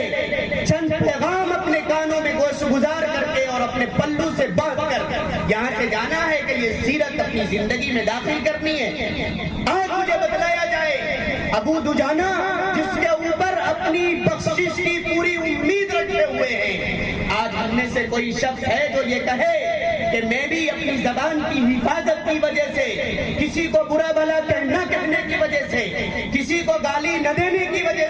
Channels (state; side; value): identical; both; correlation 1.00